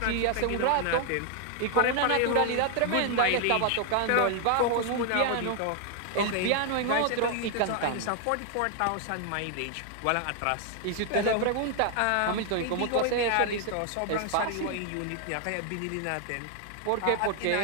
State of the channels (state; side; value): different; both; correlation 0.00